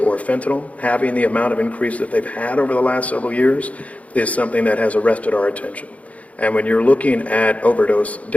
or fentanyl having the amount of increase that they've had over the last several years is something that has arrested our attention. And when you're looking at overdose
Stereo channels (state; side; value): late; right; 0.067 ms